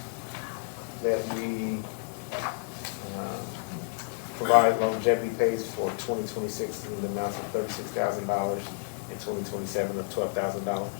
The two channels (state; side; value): silent; right; digital silence